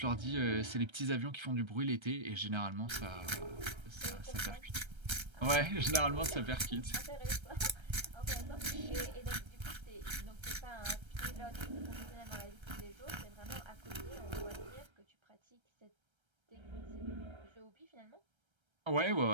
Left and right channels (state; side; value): late; left; 1.3 ms